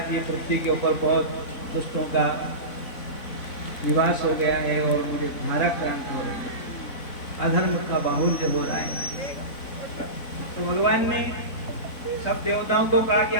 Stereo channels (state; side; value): late; right; 4.0 ms